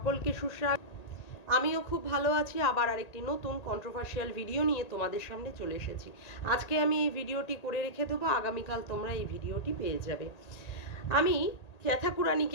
সুস্বাগত। আমিও খুব ভালো আছি। আবার আরেকটি নতুন কন্ট্রোভার্সিয়াল ভিডিও নিয়ে তোমাদের সামনে চলে এসেছি। আজকে আমি এই ভিডিওটি করে রেখে দেবো, আগামীকাল তোমরা এই ভিডিওটি পেয়ে যাবে। আমি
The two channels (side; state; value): right; late; 1.8 ms